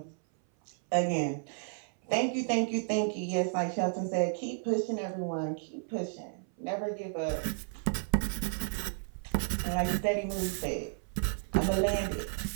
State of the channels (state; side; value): silent; left; 56 dB below the other